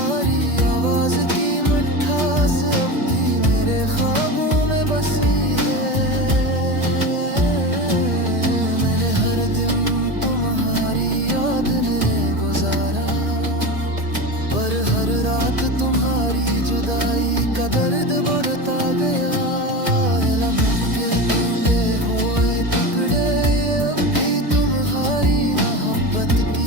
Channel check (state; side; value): late; left; 1.8 ms